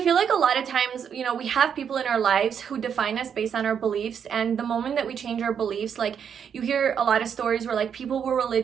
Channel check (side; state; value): left; quieter; 7.7 dB